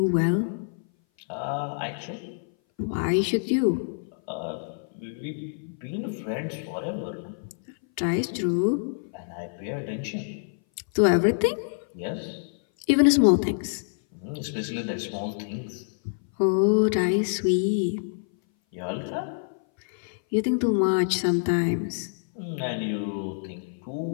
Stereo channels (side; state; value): right; silent; 58 dB below the other